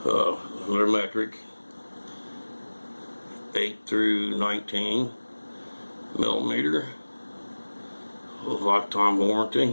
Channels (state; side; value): inverted; both; correlation -1.00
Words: They're metric, 8 through 19 millimeter. Lifetime